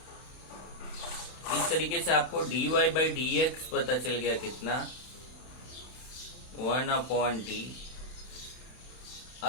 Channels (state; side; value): late; right; 32 ms